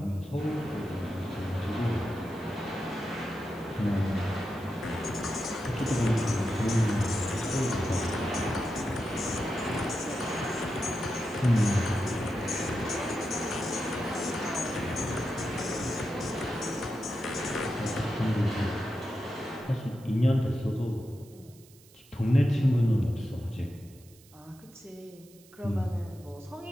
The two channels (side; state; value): right; noise; hiss, 25 dB below the sound